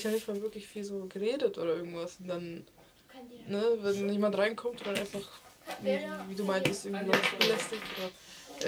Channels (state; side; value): identical; both; correlation 1.00